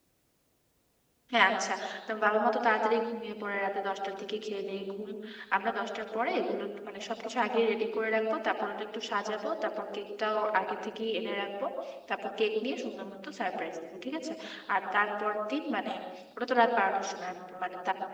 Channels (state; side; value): identical; both; correlation 1.00